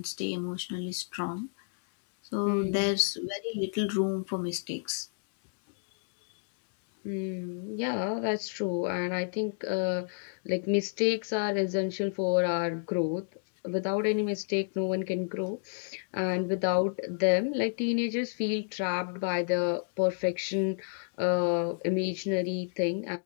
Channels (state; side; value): silent; right; digital silence